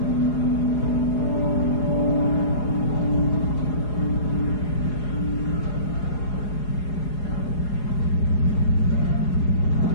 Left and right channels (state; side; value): late; right; 4.8 ms